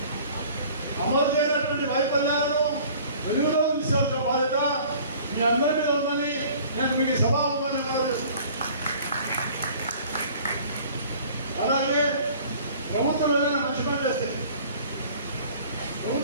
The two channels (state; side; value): inverted; both; correlation -0.49